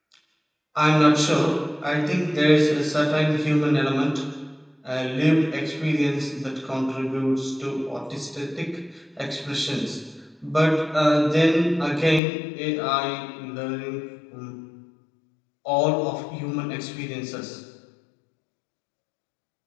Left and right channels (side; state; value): right; drops out; at 12.2 s